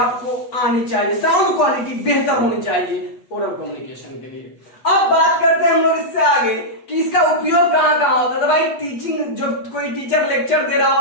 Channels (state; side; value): late; right; 8.2 ms